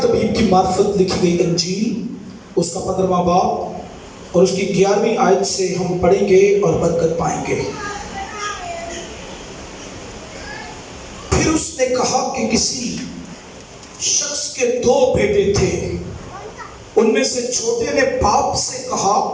طبیب کی معرفت لکھی گئی انجیل، اس کا 15واں باب اور اس کی 11ویں آیت سے ہم پڑھیں گے اور برکت پائیں گے۔ پھر اس نے کہا کہ کسی شخص کے 2 بیٹے تھے، ان میں سے چھوٹے نے باپ سے کہا،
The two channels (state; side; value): identical; both; correlation 1.00